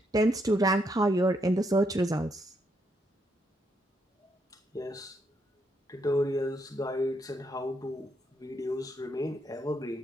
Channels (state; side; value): normal; both; correlation 0.77